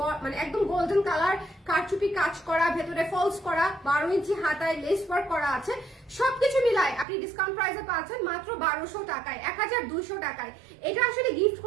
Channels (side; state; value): left; drops out; at 7.1 s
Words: মানে একদম গোল্ডেন কালার, কারচুপি কাজ করা, ভেতরে ফলস করা, 12 ইঞ্চি হাতায় লেস ওয়ার্ক করা আছে। সবকিছু মিলায় আপনি ডিসকাউন্ট প্রাইসে পাচ্ছেন মাত্র 1200 টাকায়, 1200 টাকায়। এটা আসলে গিফট